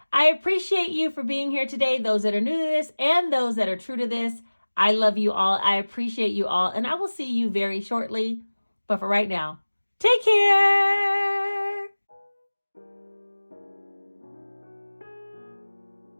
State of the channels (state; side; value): inverted; both; correlation -1.00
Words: I appreciate you for being here today, those that are new to this and those that are true to this. I love you all. I appreciate you all, and I will see you very shortly. But for right now, take care.